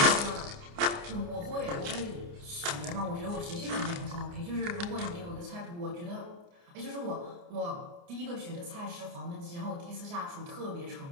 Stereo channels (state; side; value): late; left; 29 ms